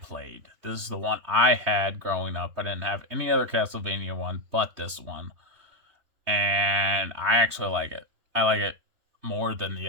This is the one I had growing up. I didn't have any other Castlevania one but this one. And I actually like it. I like it more than the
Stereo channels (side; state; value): left; late; 3.2 ms